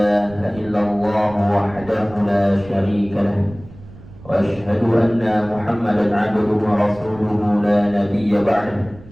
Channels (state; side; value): noise; right; rumble, 19 dB below the sound